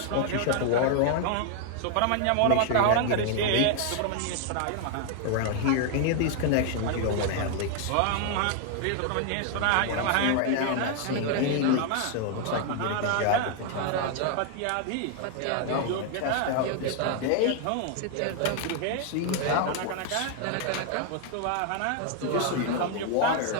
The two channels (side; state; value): both; different; correlation 0.00